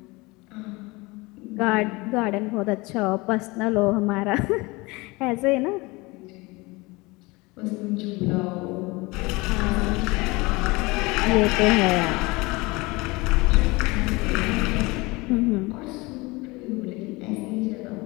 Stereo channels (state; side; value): quieter; right; 23.9 dB